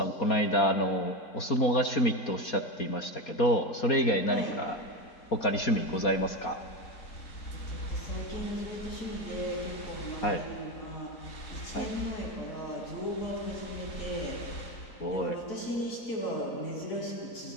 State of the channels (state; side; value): late; right; 4.2 ms